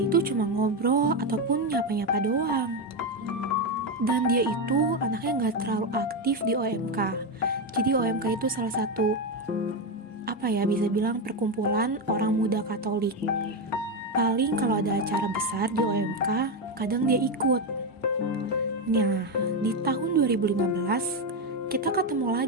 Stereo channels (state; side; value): normal; both; correlation 0.10